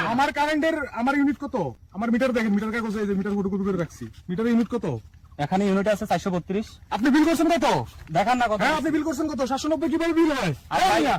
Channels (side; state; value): both; identical; correlation 1.00